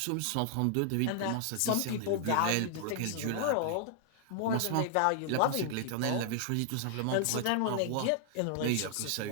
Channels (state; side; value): different; both; correlation -0.01